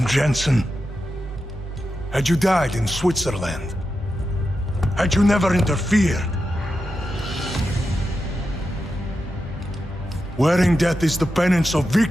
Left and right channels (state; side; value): normal; both; correlation 0.89